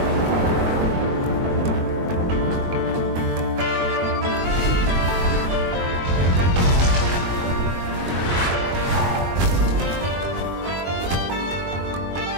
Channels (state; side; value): late; left; 22 ms